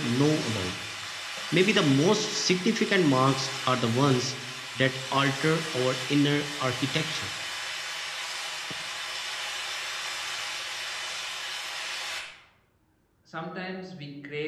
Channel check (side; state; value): both; identical; correlation 1.00